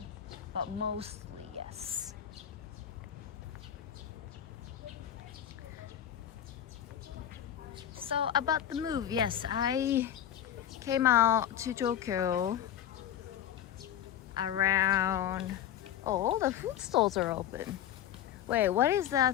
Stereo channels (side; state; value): right; quieter; 10.5 dB